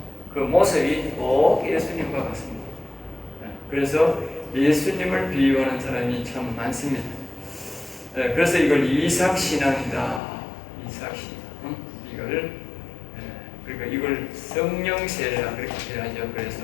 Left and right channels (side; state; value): right; drops out; at 10.2 s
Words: 그 모습이 꼭 예수님과 같습니다. 그래서 예수님을 비유하는 사람이 참 많습니다. 그래서 이걸 이삭 신앙이다. 이삭 신앙. 그러니까 이걸 성령세례라 그렇게 해야죠.